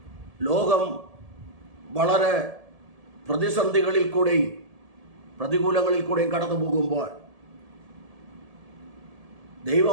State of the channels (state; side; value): late; left; 1.7 ms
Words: ലോകം വളരെ പ്രതിസന്ധികളിൽ കൂടെയും പ്രതികൂലങ്ങളിൽ കൂടെയും കടന്നു പോകുമ്പോൾ